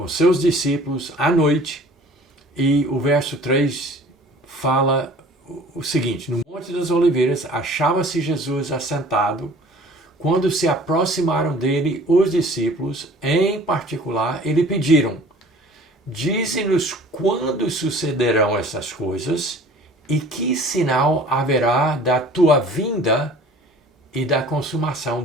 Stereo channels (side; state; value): both; normal; correlation 0.48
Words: seus discípulos à noite, e o verso 3 fala o seguinte: no Monte das Oliveiras achava-se Jesus assentado. Quando se aproximaram dele os discípulos, em particular, lhe pediram: dize-nos quando sucederão essas coisas e que sinal haverá da tua vinda e da consumação